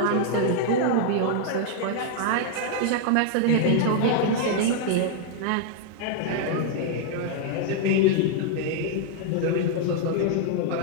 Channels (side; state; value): both; different; correlation 0.00